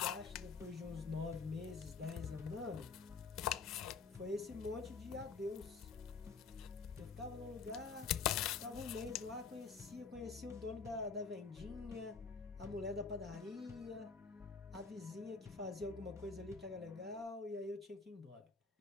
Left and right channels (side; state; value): right; quieter; 5.1 dB